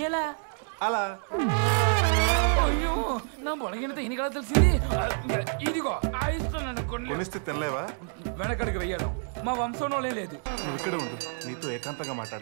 ఎలా? అలా. అయ్యో, నా బొలగినతో ఇన్ని కదా తెలిసింది. ఇదిగో ఆయిస్తున్నాను. కొనిస్తే తినలేవా? వెనకడికి వెయ్యడం మా వంశంలోనే లేదు. నువ్వు ఇక్కడే ఉండు, నీతో ఏకాంతంగా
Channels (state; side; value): silent; left; 59 dB below the other